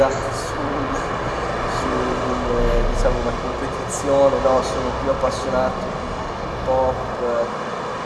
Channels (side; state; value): both; identical; correlation 1.00